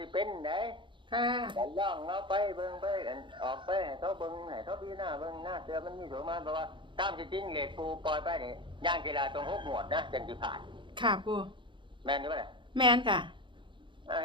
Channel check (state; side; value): late; left; 0.23 ms